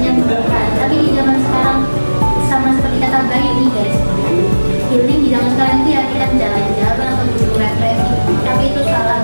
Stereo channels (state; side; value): inverted; both; correlation -1.00